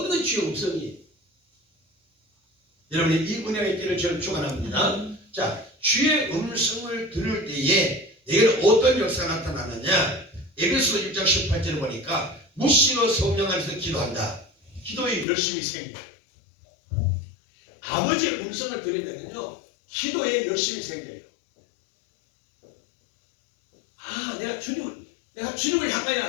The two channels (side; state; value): right; drops out; at 15.2 s